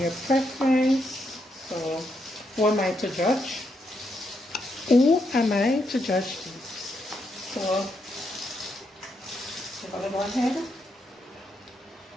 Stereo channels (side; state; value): both; normal; correlation 0.79